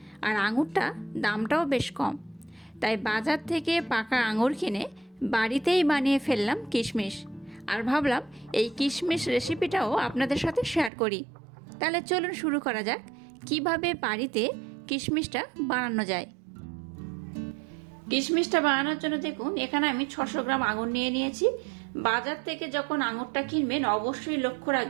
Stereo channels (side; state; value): left; drops out; at 10.9 s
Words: আর আঙুরটা দামটাও বেশ কম। তাই বাজার থেকে পাকা আঙুর কিনে বাড়িতেই বানিয়ে ফেললাম কিশমিশ, আর ভাবলাম এই কিশমিশ রেসিপিটাও আপনাদের সাথে শেয়ার করি। তাহলে চলুন শুরু করা যাক কিভাবে বাড়িতে কিশমিশটা বানানো যায়। কিশমিশটা বানানোর জন্য দেখুন, এখানে আমি 600 গ্রাম আঙুর নিয়ে নিয়েছি। বাজার থেকে যখন আঙুরটা কিনবেন অবশ্যই লক্ষ্য